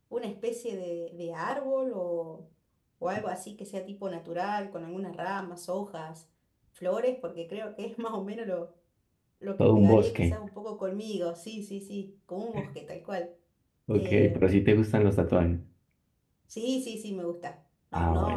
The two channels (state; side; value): identical; both; correlation 1.00